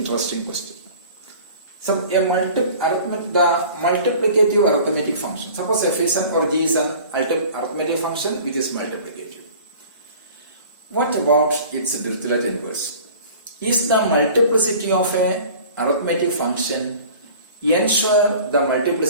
question. So, the multiplicative arithmetic function, suppose f is an or G is an arithmetic function which is multiplicative. What about its Dirichlet inverse? Is the multiplicity of an arithmetic function ensure the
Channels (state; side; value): inverted; both; correlation -0.44